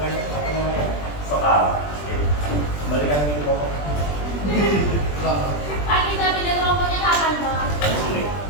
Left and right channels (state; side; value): late; right; 20 ms